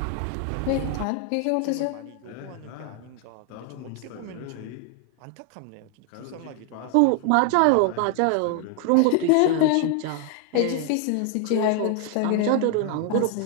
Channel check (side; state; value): both; different; correlation 0.00